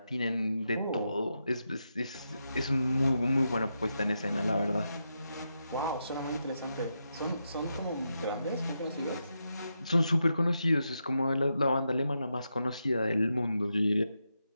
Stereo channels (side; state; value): both; inverted; correlation -0.85